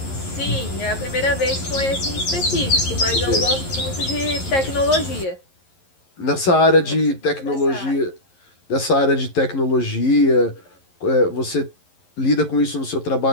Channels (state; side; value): late; right; 11 ms